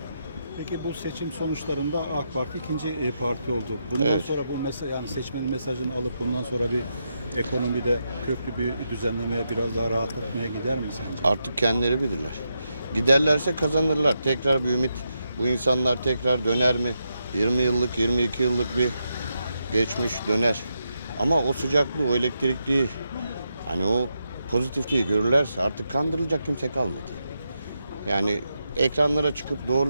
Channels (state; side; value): inverted; both; correlation -0.85